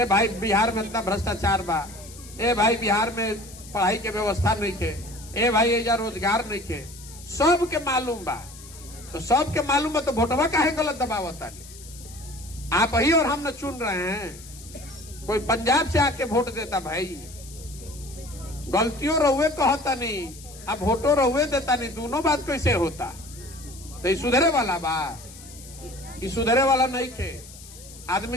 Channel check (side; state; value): left; noise; hiss, 18 dB below the sound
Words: भाई बिहार में इतना भ्रष्टाचार बा, ए भाई बिहार में पढ़ाई के व्यवस्था नहीं के, ए भाई एजा रोजगार नहीं के, सबके मालूम बा। तो सबके मालूम है तो वोटवा काहे गलत दबावता? आप ही और हम न चुन रहे हैं, कोई पंजाब से आके वोट देता भाई। गलतियों रहुए कहता नहीं, अब वोटो रहुए देता नहीं, दोनों बात कैसे होता? तो ये सुधरे वाला बा? ये सुधरे वाला नहीं थे।